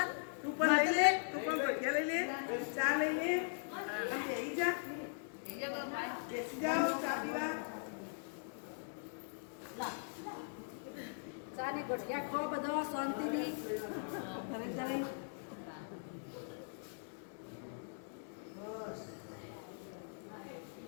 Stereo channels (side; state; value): right; silent; digital silence